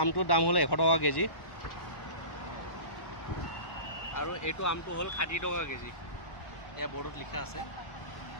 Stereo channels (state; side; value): late; right; 1.1 ms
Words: আমটোৰ দাম হ'ল 100 টকা কেজি আৰু এইটো আমটো হ'ল 60 টকা কেজি ये बोर्ड लिखा আছে